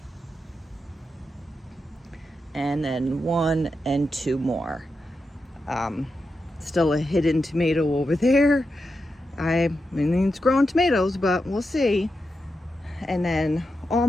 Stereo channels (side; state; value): both; normal; correlation 0.88